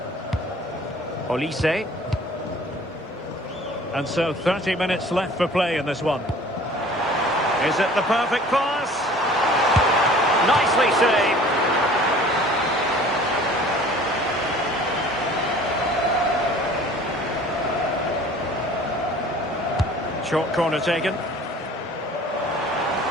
Olise. And so 30 minutes left for play in this one. Is it the perfect pass? Nicely saved. Short corner taken.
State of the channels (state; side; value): normal; both; correlation 0.48